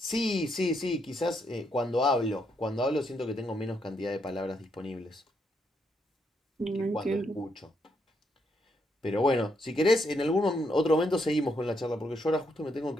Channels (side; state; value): both; normal; correlation 0.77